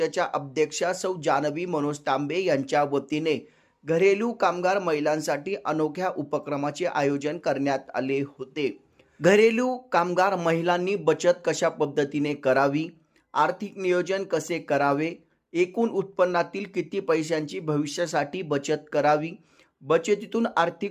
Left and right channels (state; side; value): identical; both; correlation 1.00